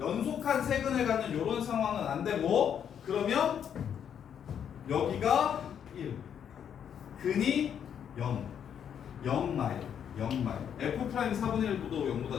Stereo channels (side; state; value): right; quieter; 8.5 dB